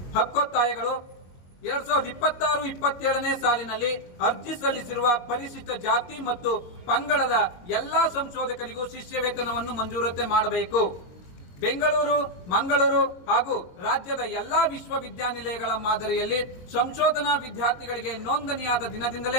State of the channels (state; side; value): late; right; 22 ms